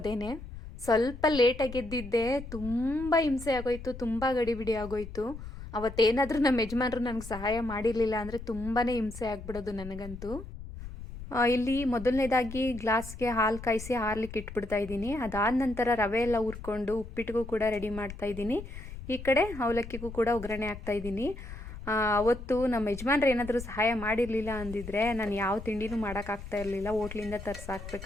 ಸ್ವಲ್ಪ ಲೇಟಾಗಿ ಎದ್ದಿದ್ದೆ, ತುಂಬ ಹಿಂಸೆ ಆಗೋಯ್ತು, ತುಂಬ ಗಡಿಬಿಡಿ ಆಗೋಯ್ತು. ಅವತ್ತೇನಾದರೂ ನಮ್ಮ ಯಜಮಾನರು ನನಗೆ ಸಹಾಯ ಮಾಡಿರಲಿಲ್ಲ ಅಂದರೆ ತುಂಬಾ ಹಿಂಸೆ ಆಗಿಬಿಡೋದು ನನಗಂತೂ. ಇಲ್ಲಿ ಮೊದಲನೇದಾಗಿ ಗ್ಲಾಸ್ಗೆ ಹಾಲು ಕಾಯಿಸಿ ಹಾರ್ಲಿಕ್ಕೆ ಇಟ್ಬಿಡ್ತಾ ಇದ್ದೀನಿ. ಅದಾದ ನಂತರ ರವೆ ಎಲ್ಲ ಹುರ್ಕೊಂಡು ಉಪ್ಪಿಟ್ಟಿಗೂ ಕೂಡ ರೆಡಿ ಮಾಡ್ತಾ ಇದ್ದೀನಿ. ಈ ಕಡೆ ಅವಲಕ್ಕಿಗೂ ಕೂಡ ಒಗ್ಗರಣೆ ಹಾಕ್ತಾ ಇದ್ದೀನಿ. ಅವತ್ತು ನಮ್ಮ ಯಜಮಾನ್ರು ಏನಾದರೂ ಸಹಾಯ ಮಾಡಿರಲಿಲ್ಲ ಅಂದಿದ್ರೆ ನಾನು ಯಾವ ತಿಂಡಿನೂ ಮಾಡೋಕ್ಕಾಗ್ತಾ ಇರಲಿಲ್ಲ, ಹೋಟ್ಲಿಂದ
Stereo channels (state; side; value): noise; left; rumble, 12 dB below the sound